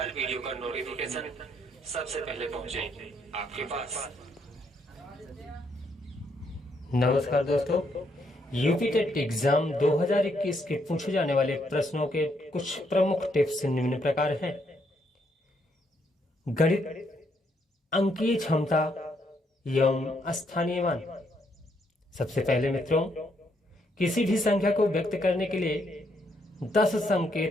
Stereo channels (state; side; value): normal; both; correlation 0.74